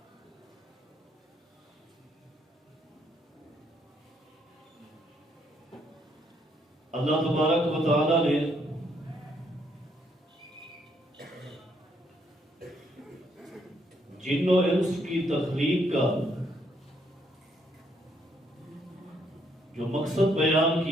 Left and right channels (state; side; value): normal; both; correlation 0.71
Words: اللہ تبارک و تعالی نے جن و انس کی تخلیق کا جو مقصد بیان